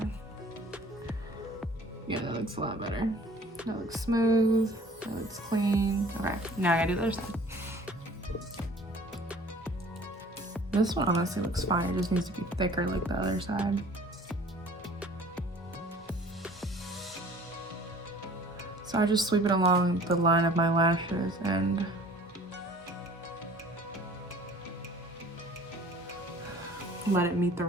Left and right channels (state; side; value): normal; both; correlation 0.50